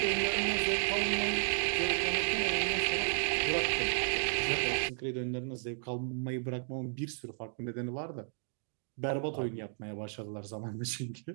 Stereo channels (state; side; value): silent; left; digital silence